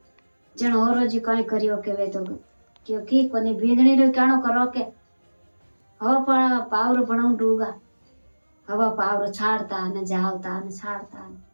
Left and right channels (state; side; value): inverted; both; correlation -1.00